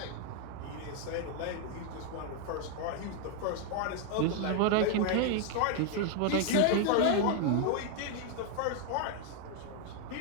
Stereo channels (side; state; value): both; different; correlation 0.01